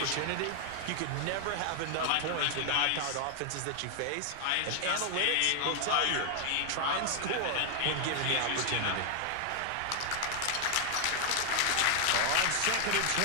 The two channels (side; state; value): both; different; correlation 0.00